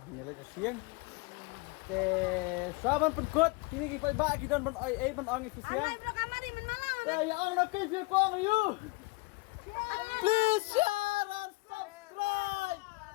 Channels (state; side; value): quieter; right; 25.5 dB